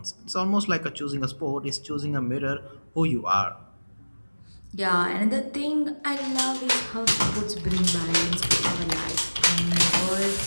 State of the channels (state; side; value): inverted; both; correlation -1.00